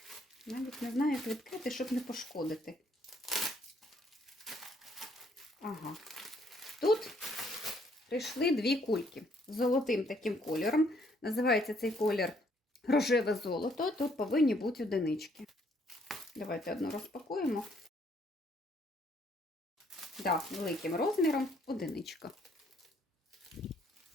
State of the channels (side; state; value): both; normal; correlation 0.67